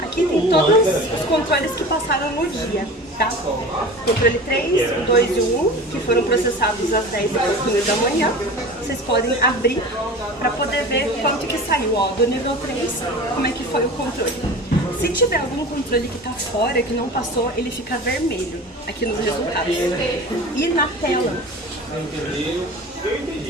Aqui tem todos os controles que passaram no dia, tá? Controle 3, o 2 e o 1, que foram processados às 10 da manhã. Vocês podem abrir para poder ver quanto que saiu, ó, do nível 3, como é que foi o controle. Se tiver algum controle que está fora, que não passou, ele fica vermelho aqui nos resultados. E na tela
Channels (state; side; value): normal; both; correlation 0.36